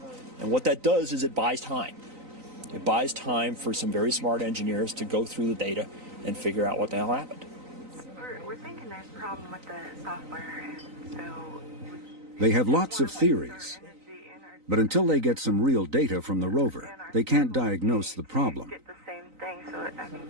And what that does is it buys time. It buys time for some very smart engineers to go through the data and figure out what the hell happened. We're thinking there's a problem with the software, and so... They have lots of theories, But until they get some real data from the rover, they can't diagnose the problem. Get the same thing, so I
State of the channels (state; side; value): late; left; 3.9 ms